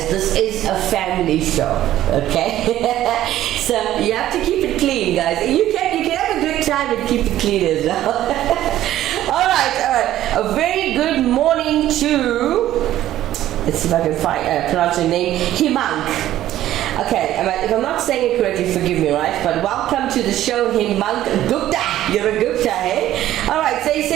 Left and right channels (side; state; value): left; quieter; 13.3 dB